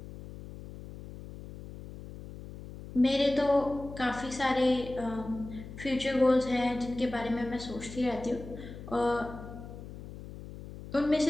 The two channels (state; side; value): noise; left; hum, 13 dB below the sound